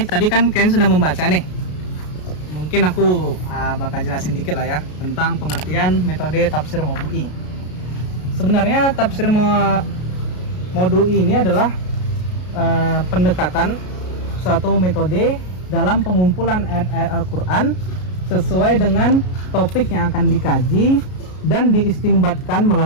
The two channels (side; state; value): right; late; 33 ms